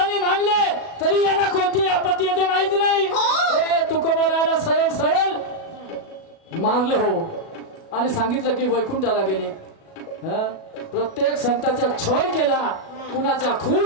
मांडले तरी यांना कोणती आपत्ती येते माहिती नाही. हे तुकोबराला सरळ सरळ मारलं हो आणि सांगितलं की वैकुंठाला गेले. हं? प्रत्येक संताचा छळ केला, कुणाचा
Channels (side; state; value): right; late; 37 ms